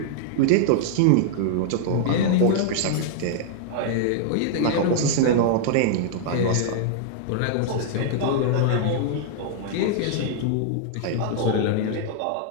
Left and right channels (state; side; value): different; both; correlation -0.01